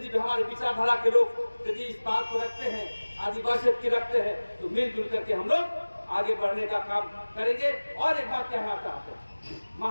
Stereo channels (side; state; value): both; inverted; correlation -1.00